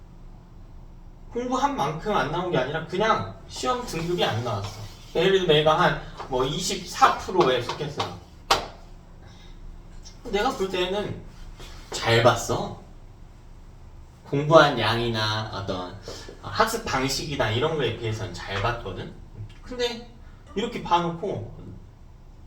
공부한 만큼 안 나온 게 아니라 그냥 시험 등급이 안 나왔어. 예를 들어 내가 한 뭐 24%에 속했어. 내가 볼 때는 잘 봤어. 공부한 양이나 어떤 학습 방식이나 이런 거에 비해서는 잘 봤거든. 근데 이렇게 봐놓고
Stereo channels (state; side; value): identical; both; correlation 1.00